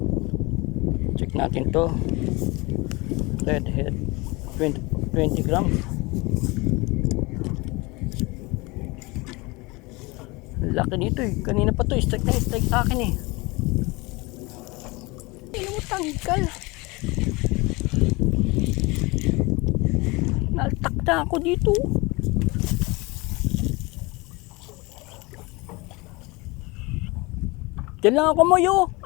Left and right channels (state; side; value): quieter; right; 24.7 dB